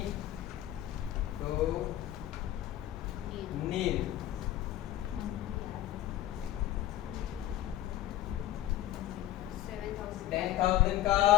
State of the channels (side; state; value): right; quieter; 13.6 dB